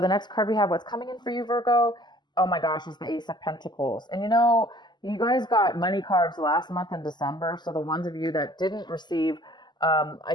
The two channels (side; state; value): right; late; 0.21 ms